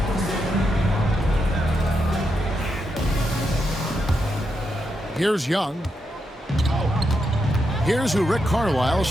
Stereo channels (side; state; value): both; normal; correlation 0.83